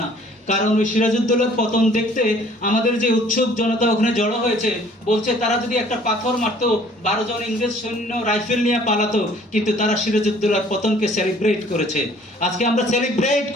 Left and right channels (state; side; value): normal; both; correlation 0.55